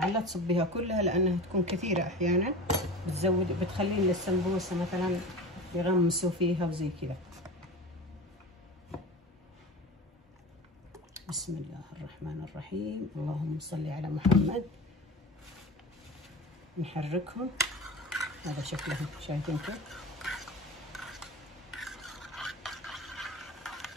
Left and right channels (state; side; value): normal; both; correlation 0.32